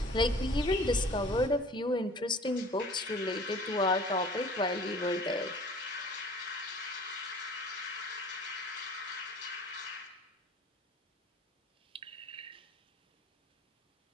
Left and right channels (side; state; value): both; normal; correlation 0.47